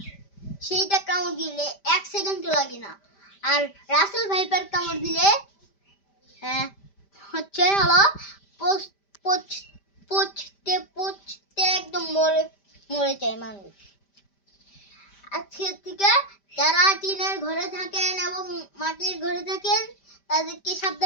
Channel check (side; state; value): right; late; 5.1 ms